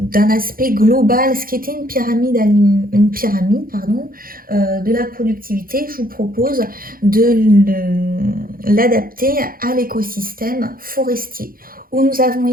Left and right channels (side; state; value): left; late; 0.42 ms